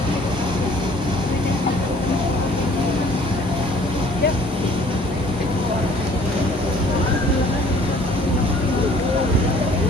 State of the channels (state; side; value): normal; both; correlation 0.55